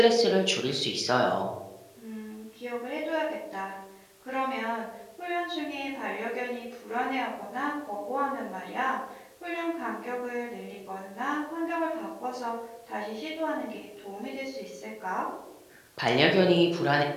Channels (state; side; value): identical; both; correlation 1.00